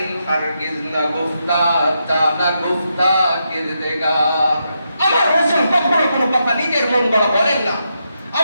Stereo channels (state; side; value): inverted; both; correlation -0.83